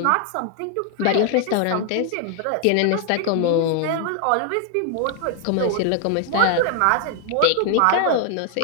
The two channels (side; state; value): both; different; correlation 0.00